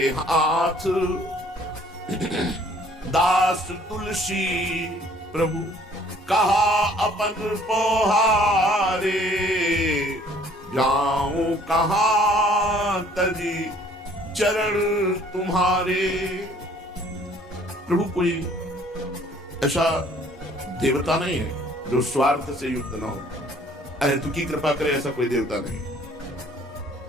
हाथ दास तुलसी। प्रभु कहा अपन पोहारे, जाऊं कहां तजी चरण तुम्हारे। प्रभु कोई ऐसा देवता नहीं है जो स्वार्थ से युक्त ना हो, अहेतुकी कृपा करे, ऐसा कोई देवता नहीं।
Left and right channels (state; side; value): normal; both; correlation 0.57